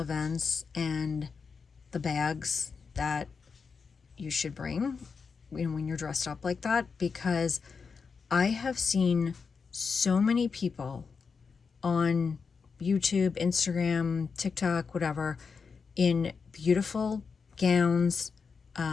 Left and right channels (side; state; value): right; quieter; 5.4 dB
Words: and the bags that you should bring when you're dressed up like that, because I have seen so many people on YouTube, Instagram, TikTok, whatever, in beautiful gowns,